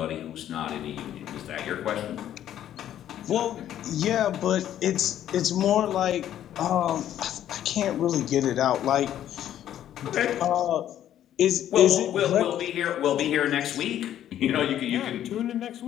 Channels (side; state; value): right; quieter; 11.3 dB